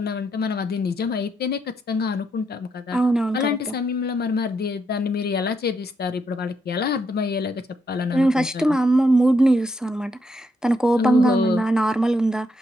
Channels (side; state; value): both; normal; correlation 0.78